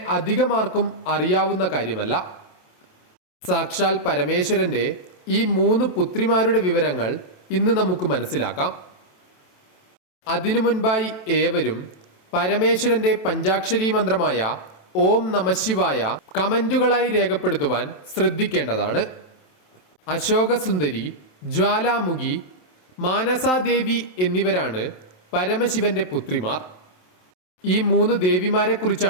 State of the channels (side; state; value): right; late; 27 ms